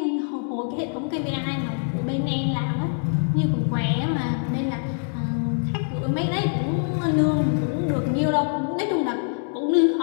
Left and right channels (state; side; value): silent; right; digital silence